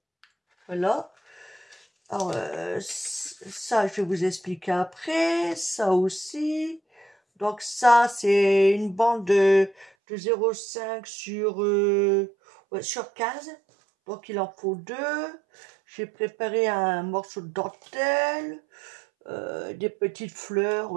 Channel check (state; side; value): drops out; left; at 9.9 s